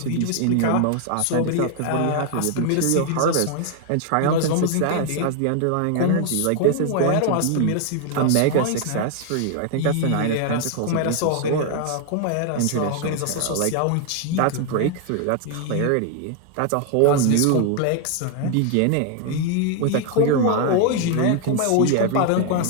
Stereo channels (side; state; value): both; different; correlation 0.00